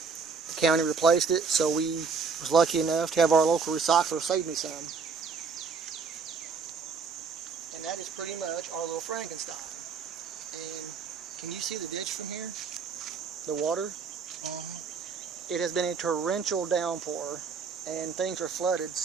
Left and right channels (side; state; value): left; quieter; 5.3 dB